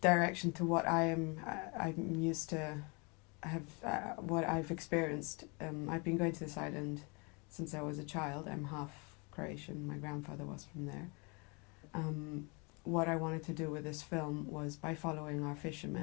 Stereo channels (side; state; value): right; quieter; 31.3 dB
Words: direction to what I'm used to what I've experienced. I've been going to this island since I was a child. I'm half Croatian. My grandfather was from there. What I wanted to do with this film was, by following our